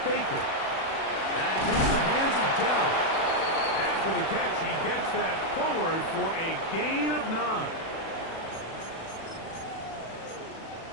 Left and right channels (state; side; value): late; right; 36 ms